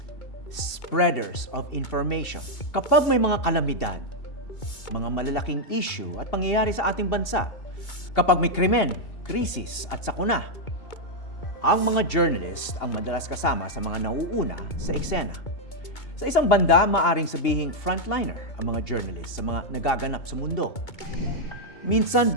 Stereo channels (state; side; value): late; right; 2.8 ms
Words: Spreaders of information. Kapag may mga kalamidad, mga malalaking issue at pangyayari sa ating bansa, kapag may krimen, krisis at sakuna, ang mga journalist ang madalas kasama sa mga nauuna sa eksena. Sa isang banda, maaring sabihing frontliner ang mga journalist sa mga nagaganap sa mundo. Minsan